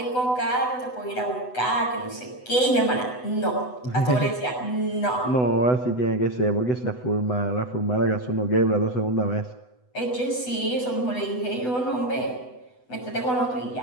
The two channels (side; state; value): right; late; 8.0 ms